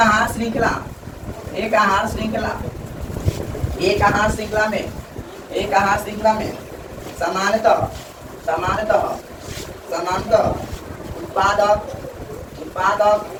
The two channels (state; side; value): identical; both; correlation 1.00